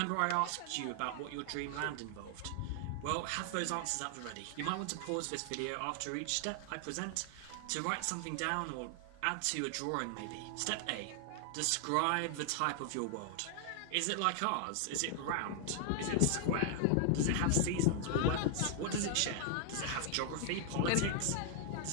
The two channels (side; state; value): both; different; correlation 0.00